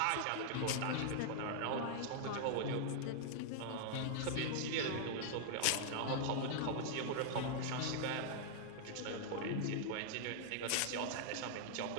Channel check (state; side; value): different; both; correlation -0.01